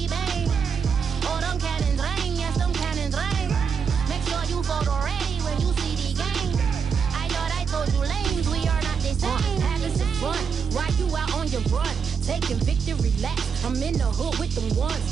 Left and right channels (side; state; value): left; quieter; 6.3 dB